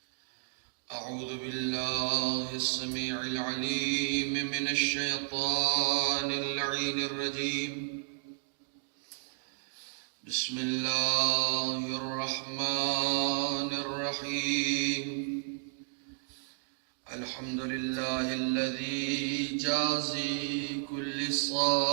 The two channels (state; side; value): silent; left; digital silence